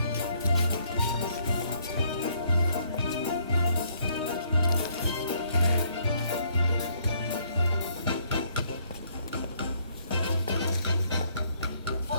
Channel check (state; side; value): inverted; both; correlation -0.67